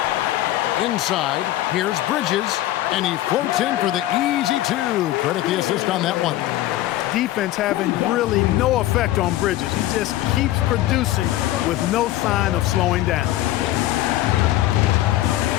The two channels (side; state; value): right; quieter; 15.0 dB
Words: Inside, here's Bridges, and he floats in for the easy 2. Credit the assist on that one. Defense having really no effect on Bridges. He just keeps producing with no sign of slowing down.